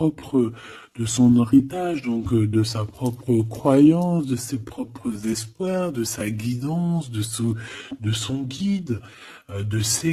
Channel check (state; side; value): identical; both; correlation 1.00